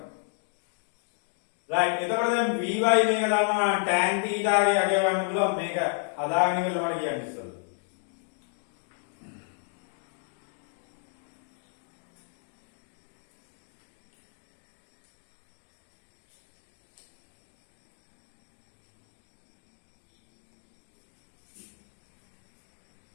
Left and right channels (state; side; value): silent; right; 57 dB below the other